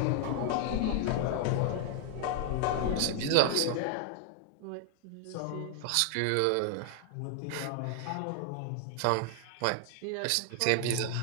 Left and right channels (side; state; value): both; different; correlation 0.00